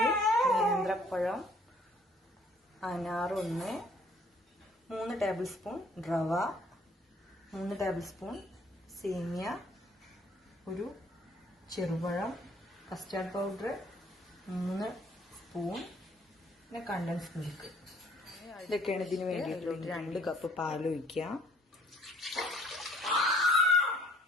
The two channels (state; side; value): normal; both; correlation 0.59